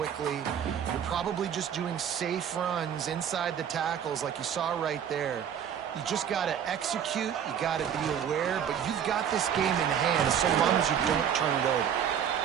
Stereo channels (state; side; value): quieter; left; 8.7 dB